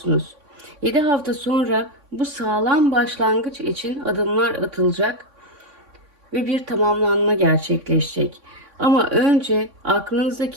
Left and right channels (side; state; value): left; late; 3.6 ms